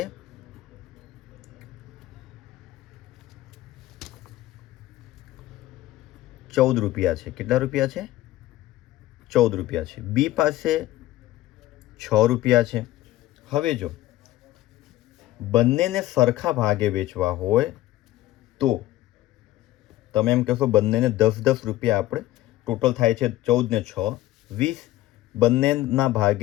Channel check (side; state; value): right; quieter; 15.6 dB